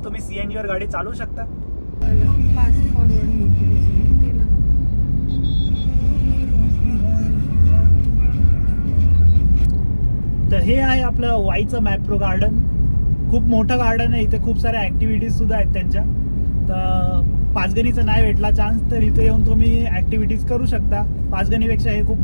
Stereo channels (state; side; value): inverted; both; correlation -1.00